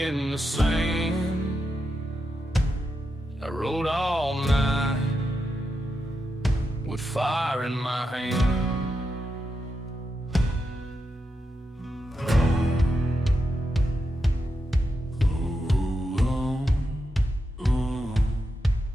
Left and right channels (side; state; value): both; normal; correlation 0.86